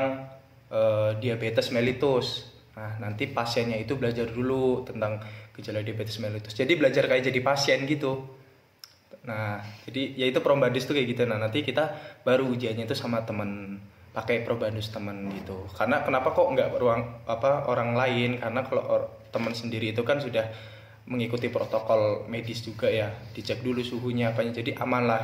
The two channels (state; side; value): identical; both; correlation 1.00